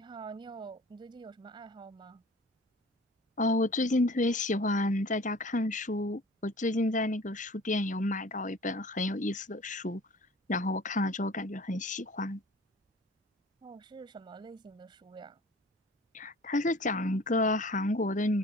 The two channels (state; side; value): normal; both; correlation 0.46